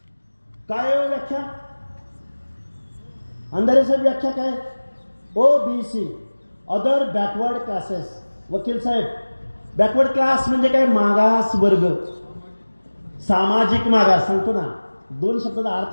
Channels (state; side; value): inverted; both; correlation -1.00